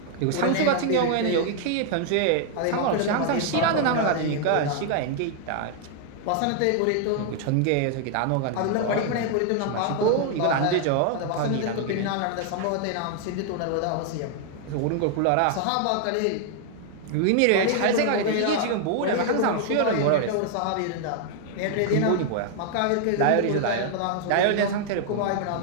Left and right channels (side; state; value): both; different; correlation 0.00